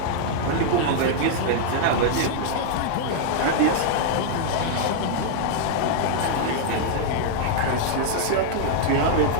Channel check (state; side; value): different; both; correlation -0.01